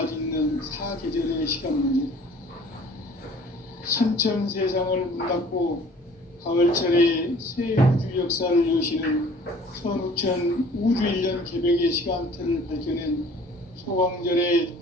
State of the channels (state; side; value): normal; both; correlation 0.51